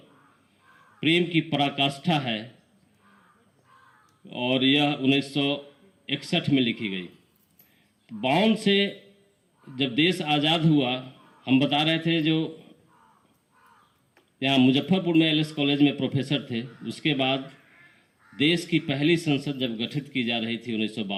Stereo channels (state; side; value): identical; both; correlation 1.00